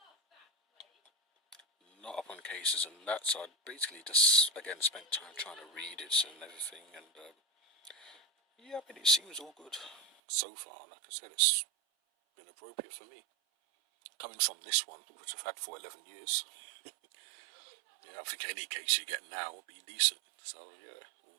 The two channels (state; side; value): drops out; left; at 10.1 s